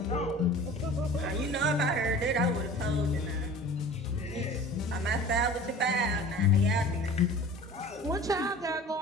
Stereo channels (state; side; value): normal; both; correlation 0.42